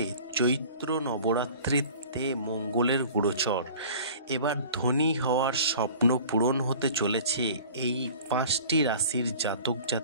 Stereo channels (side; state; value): both; inverted; correlation -0.45